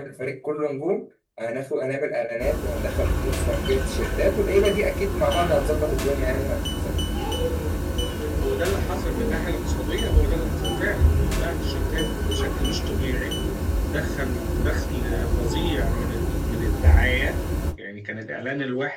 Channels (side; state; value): both; identical; correlation 1.00